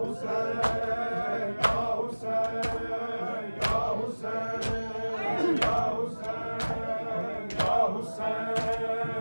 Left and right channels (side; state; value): both; inverted; correlation -1.00